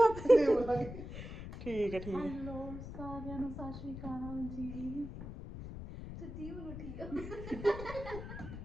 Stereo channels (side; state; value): left; noise; rumble, 9 dB below the sound